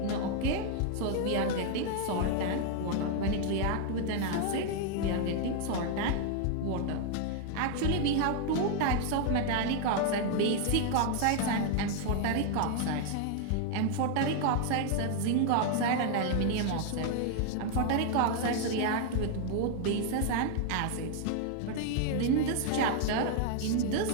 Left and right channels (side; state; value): both; different; correlation 0.00